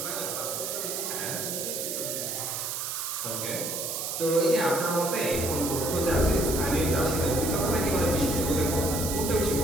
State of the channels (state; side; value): noise; right; hiss, 3 dB below the sound